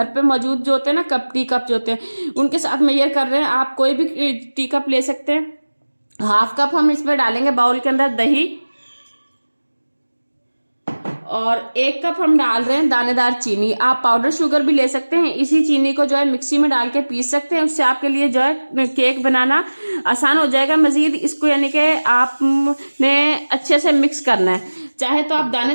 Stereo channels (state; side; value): inverted; both; correlation -1.00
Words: पे मौजूद जो होते हैं ना टी कप जो होते हैं, उनके साथ मेजर कर रहे हैं। आप कोई भी टी कप ले सकते हैं। हाफ कप हम इसमें डालेंगे बाउल के अंदर दही, और 1 कप हम डाल रहे हैं दानेदार चीनी। आप पाउडर शुगर भी ले सकते हैं। इसी चीनी को जो है मिक्सी में डाल के पीस सकते हैं, उससे आपके लिए जो है केक बनाना आसान हो जाएगा। मजीद इसको यानी कि आपने अच्छे से मिक्स करना है। चाहे तो आप